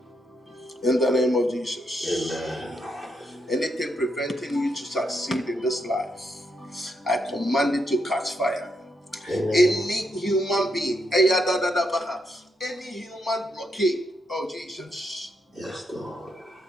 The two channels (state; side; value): normal; both; correlation 0.80